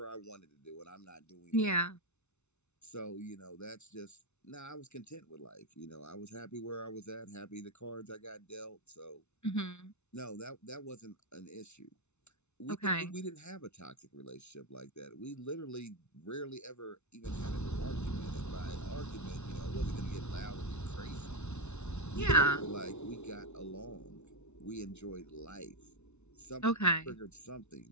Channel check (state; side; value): late; right; 0.82 ms